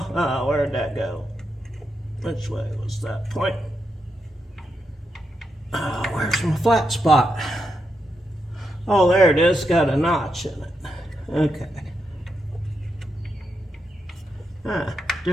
Where'd that go? Which way was that point? Where's my flat spot? Oh, there it is. Got a notch in it. Okay.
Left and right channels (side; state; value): both; normal; correlation 0.84